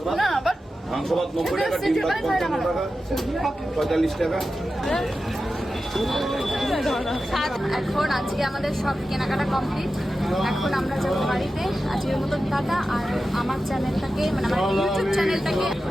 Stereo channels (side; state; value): both; normal; correlation 0.92